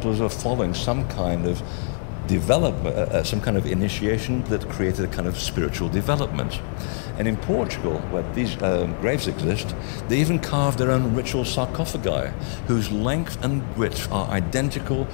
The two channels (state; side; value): silent; right; 63 dB below the other